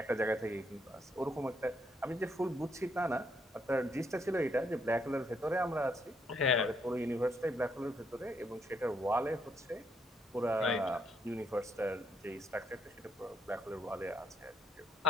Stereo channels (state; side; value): normal; both; correlation 0.74